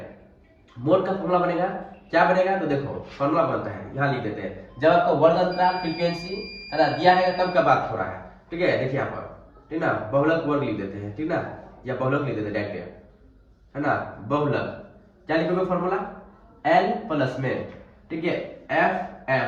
मोड का फॉर्मूला बनेगा, क्या बनेगा, तो देखो फॉर्मूला बनता है, यहाँ लिख देते हैं। जब आपको वर्ग अंतराल फ्रीक्वेंसी है ना दिया है तब का बात हो रहा है। ठीक है, देखिए यहाँ पर, ठीक ना, बहुलक वर्ग लिख देते हैं, ठीक ना, या बहुलक लिख देते हैं डायरेक्ट है ना। बहुलक क्या लिखोगे फॉर्मूला, एल प्लस में, ठीक है, एफ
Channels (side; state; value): both; identical; correlation 1.00